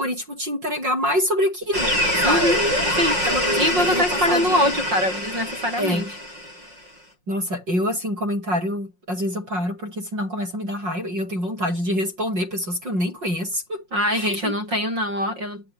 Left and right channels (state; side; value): late; left; 5.6 ms